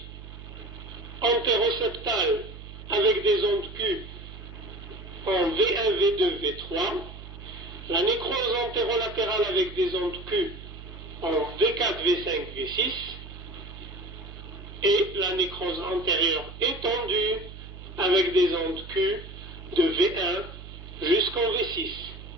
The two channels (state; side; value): noise; right; hum, 14 dB below the sound